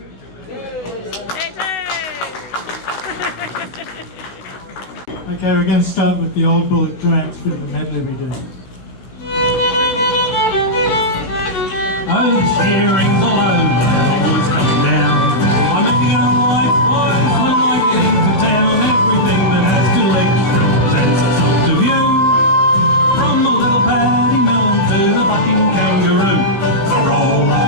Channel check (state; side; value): late; right; 16 ms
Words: Okay, we're going to start with the old bullet trance bit of the medley we do. Oh, this hearing's all over, always come down. I'm making a life wise when I get into town. Everything that has two legs represents a sort of view. From the little paddy mill to the bucking kangaroo. So roll